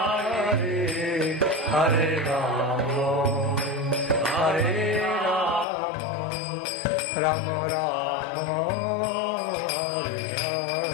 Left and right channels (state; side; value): drops out; right; at 5.7 s